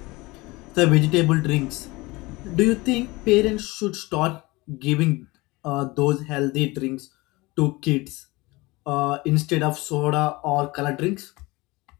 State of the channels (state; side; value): quieter; right; 22.5 dB